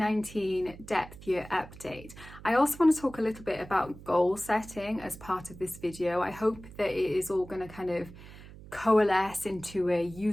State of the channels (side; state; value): right; noise; hum, 17 dB below the sound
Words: depth year update. I also want to talk a little bit about goal setting as part of this video. I hope that it is all going to kind of coalesce into a